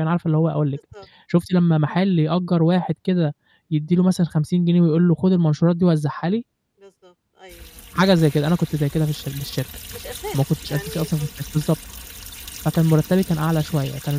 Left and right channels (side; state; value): both; identical; correlation 1.00